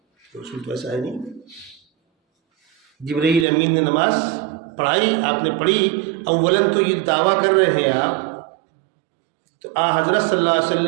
اصول تو ایسا ہے نہیں۔ جبرائیل امین نے نماز پڑھائی، آپ نے پڑھی، اولاً تو یہ دعویٰ کر رہے ہیں آپ تو حضرت صلی اللہ علیہ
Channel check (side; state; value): left; drops out; at 3.5 s